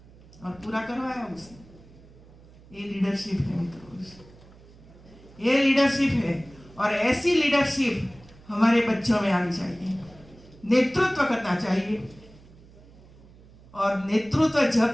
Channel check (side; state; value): right; noise; hum, 23 dB below the sound